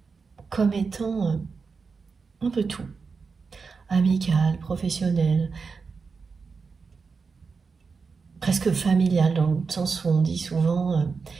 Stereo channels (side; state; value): left; quieter; 5.0 dB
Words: comme étant un peu tout. Amical, professionnel, presque familial, dans le sens où on dit souvent